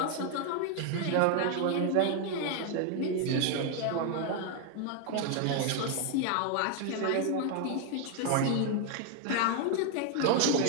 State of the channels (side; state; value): both; different; correlation 0.01